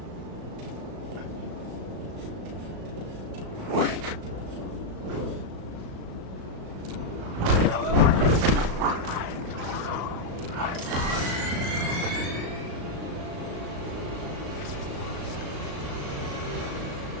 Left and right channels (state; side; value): late; left; 36 ms